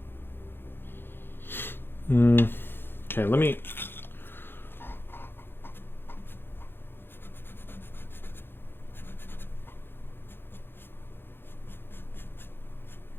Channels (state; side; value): late; right; 0.10 ms